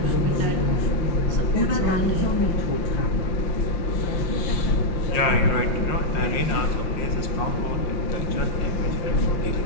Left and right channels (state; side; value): late; right; 5.6 ms